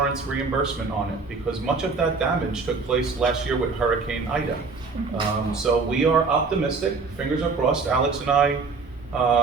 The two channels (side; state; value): left; quieter; 4.4 dB